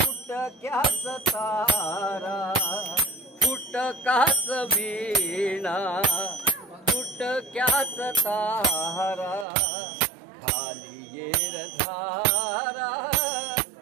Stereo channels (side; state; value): left; drops out; at 9.5 s